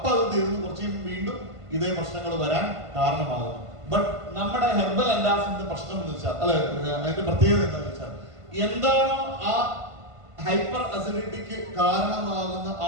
തീർന്നു കുറച്ച് വീണ്ടും ഇതേ പ്രശ്നങ്ങൾ വരാൻ കാരണമാകും. ബട്ട് നമ്മുടെ ഹെർബൽ ആന്റാസിഡിന്റെ പ്രശ്നം എന്ന് വെച്ചാൽ അതിന്റെ പ്രത്യേകത എന്താണെന്ന് വെച്ചാൽ എന്താണോ ആ ഹൈപ്പർ അസിഡിറ്റിക്ക് കാരണമാകുന്ന ആ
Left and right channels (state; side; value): late; left; 1.5 ms